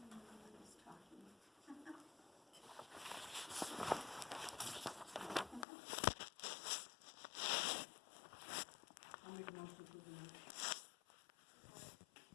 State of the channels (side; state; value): right; drops out; at 5.7 s